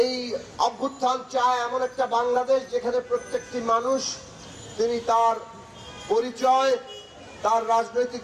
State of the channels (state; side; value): identical; both; correlation 1.00